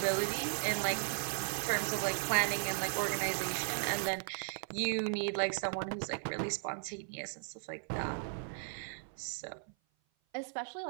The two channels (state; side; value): silent; left; 53 dB below the other